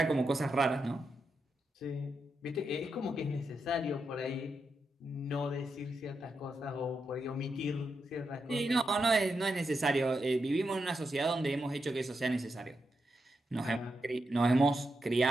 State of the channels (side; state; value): both; normal; correlation 0.85